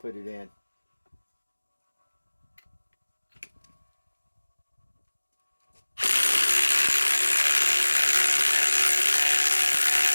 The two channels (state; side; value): inverted; both; correlation -1.00